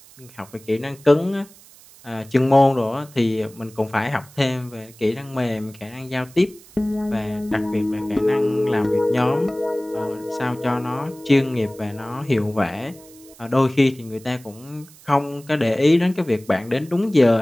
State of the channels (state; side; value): noise; right; hiss, 23 dB below the sound